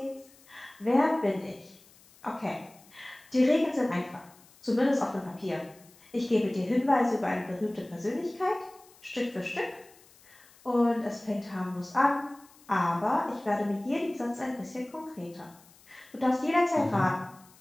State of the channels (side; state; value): left; noise; hiss, 26 dB below the sound